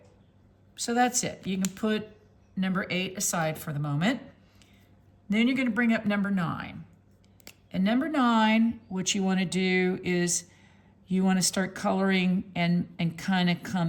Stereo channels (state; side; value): identical; both; correlation 1.00